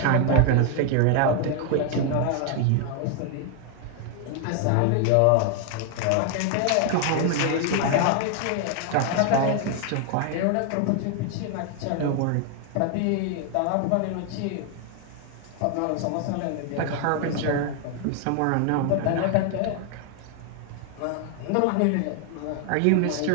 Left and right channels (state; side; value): different; both; correlation 0.00